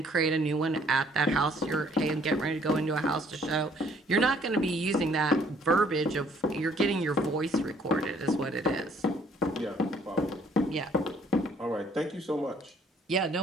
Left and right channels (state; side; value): normal; both; correlation 0.62